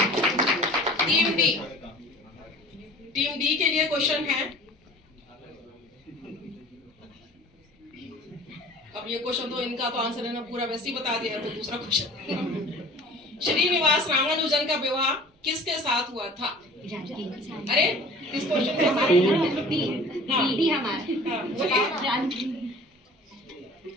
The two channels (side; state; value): both; normal; correlation 0.45